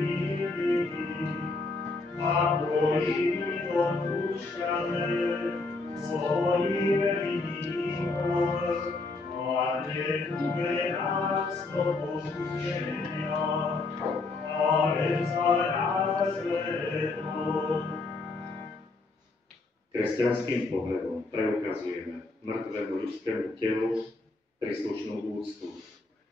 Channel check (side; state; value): right; quieter; 3.5 dB